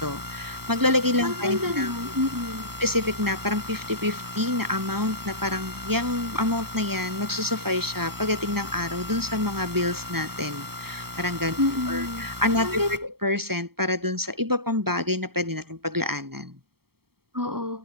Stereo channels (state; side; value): late; left; 0.95 ms